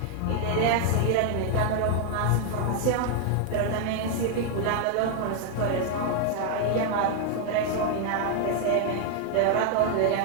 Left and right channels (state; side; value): different; both; correlation 0.00